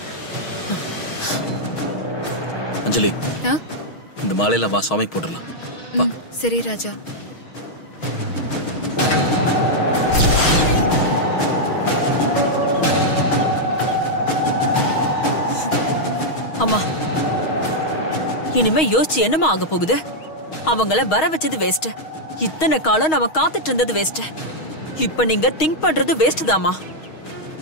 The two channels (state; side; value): late; right; 6.3 ms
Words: அஞ்சலி இந்த மாலையில வா சுவாமிக்கு போட்டுடலாம். சரி ராஜா. அம்மா இனிமே யோசிச்சு என்னமா ஆக போகுது? அவங்கள வர வச்சது வேஸ்ட். இத்தனை காலம் நம்ம காத்துட்டு இருந்தது வேஸ்ட். இப்ப நீங்க திங்க் பண்றது வேஸ்ட் தாமா.